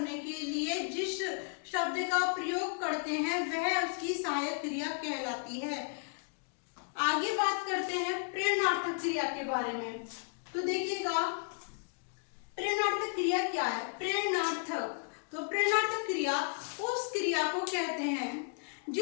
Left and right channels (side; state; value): right; quieter; 38.1 dB